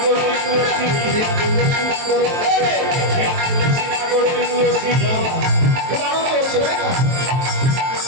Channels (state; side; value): late; left; 23 ms